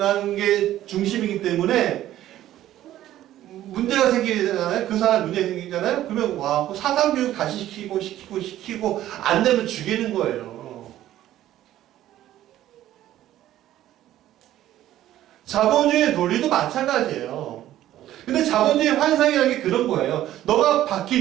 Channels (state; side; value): quieter; left; 13.3 dB